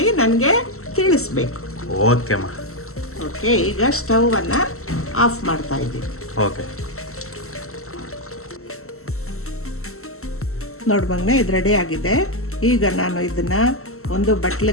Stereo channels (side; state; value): right; late; 0.63 ms